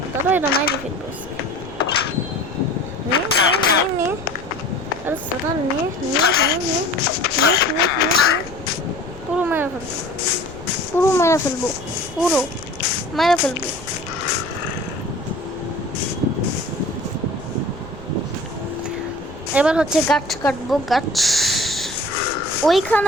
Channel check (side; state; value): left; noise; rumble, 18 dB below the sound